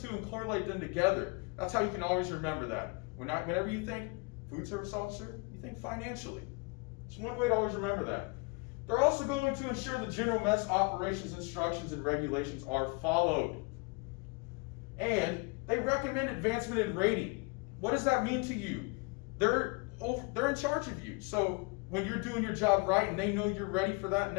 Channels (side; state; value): right; quieter; 31.1 dB